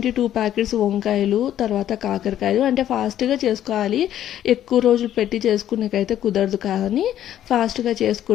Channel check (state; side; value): quieter; right; 11.5 dB